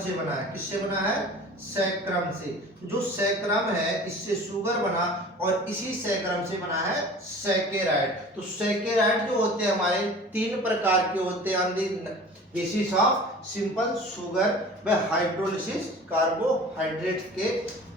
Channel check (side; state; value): both; normal; correlation 0.42